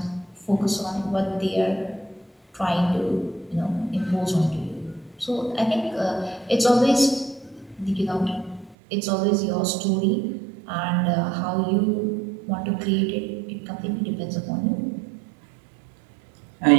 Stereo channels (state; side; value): drops out; left; at 8.8 s